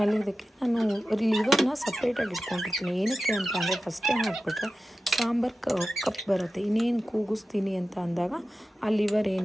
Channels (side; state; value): both; normal; correlation 0.94